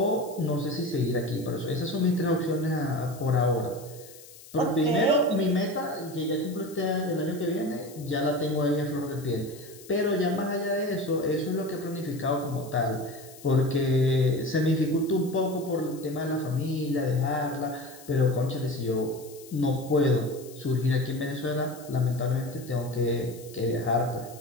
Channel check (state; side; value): noise; left; hiss, 20 dB below the sound